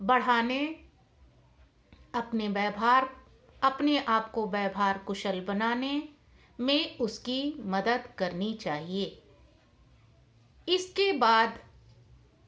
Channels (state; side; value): identical; both; correlation 1.00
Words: बढ़ाने, अपने आप को व्यवहार कुशल बनाने में उसकी मदद करनी चाहिए। इसके बाद